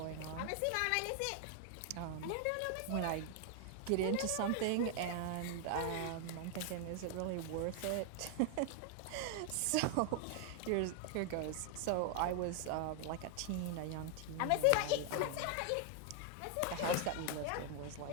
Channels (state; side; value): different; both; correlation 0.00